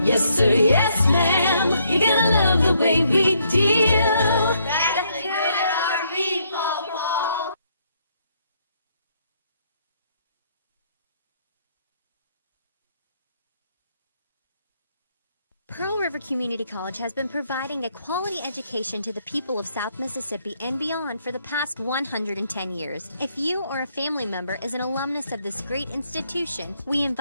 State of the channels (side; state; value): both; inverted; correlation -0.72